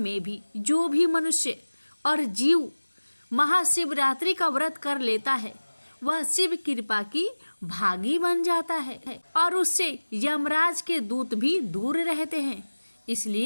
भी जो भी मनुष्य और जीव महाशिवरात्रि का व्रत कर लेता है वह शिव कृपा की भागी बन जाता है और उससे यमराज के दूत भी दूर रहते हैं।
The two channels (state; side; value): inverted; both; correlation -1.00